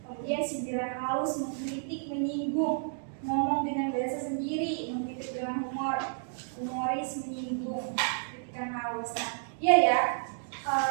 Kemudian sindiran halus, mengkritik, menyinggung, ngomong dengan bahasa sendiri, mengkritik dengan humor, humoris, menyinggung, kritikan halus. Nah, iya ya.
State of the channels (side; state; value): left; silent; digital silence